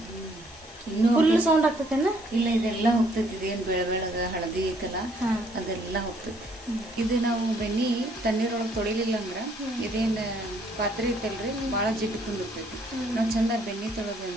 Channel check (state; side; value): normal; both; correlation 0.65